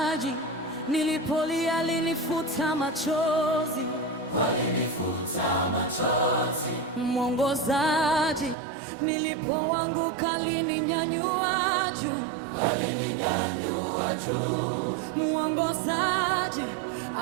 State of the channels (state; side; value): drops out; left; at 8.6 s